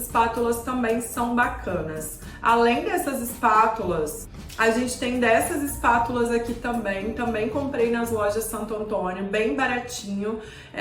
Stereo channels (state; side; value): identical; both; correlation 1.00